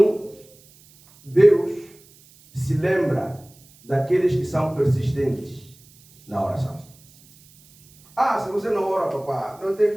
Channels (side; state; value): right; noise; hiss, 27 dB below the sound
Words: Deus se lembra daqueles que são persistentes na oração. Se você não ora, papá, não